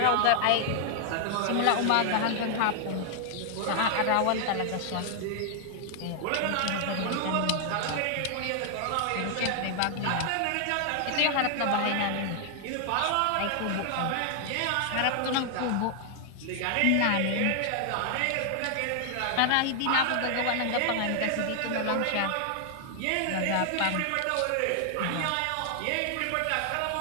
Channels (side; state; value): both; different; correlation 0.00